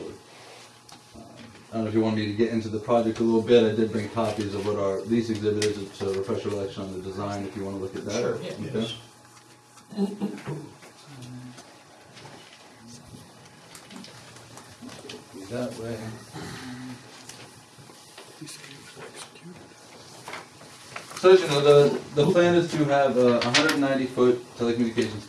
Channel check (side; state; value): both; identical; correlation 1.00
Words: I don't know if you want me to get into the project a little bit. I did bring copies of what our lease exhibit is to refresh your recollection on the design if you want to look at that. Sure, yeah. Okay. Yes. That way. So as you know, the plan is to have a 190-foot telecommunications